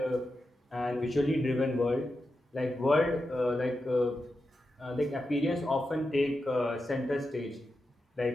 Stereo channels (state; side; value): normal; both; correlation 0.89